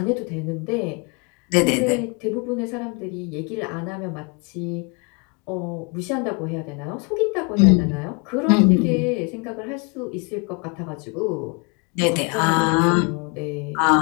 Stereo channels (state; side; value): quieter; right; 33.4 dB